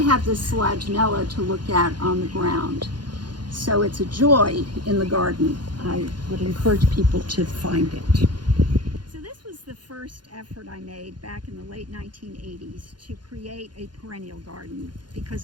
have this Selaginella to look at on the ground. So it's a joy in the garden. I would encourage people to find it. So this was the first effort I made back in the late 1980s to create a perennial garden, because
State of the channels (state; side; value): late; left; 0.71 ms